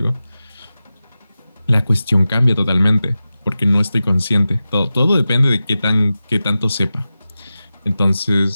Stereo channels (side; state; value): both; inverted; correlation -0.94